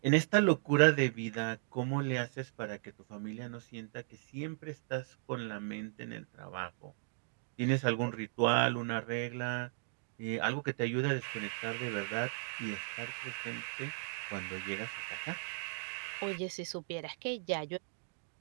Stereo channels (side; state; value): left; silent; digital silence